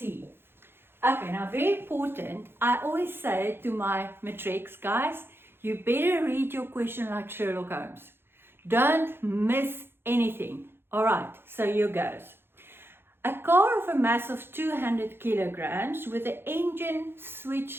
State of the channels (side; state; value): left; late; 0.11 ms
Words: Okay, now very important, I always say to my matrics guys, you better read your question like Sherlock Holmes. Don't miss anything. All right, so here goes. A car of a mass of 200 kilograms with the engine